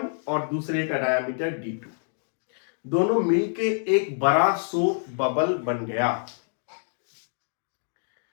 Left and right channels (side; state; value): right; silent; 60 dB below the other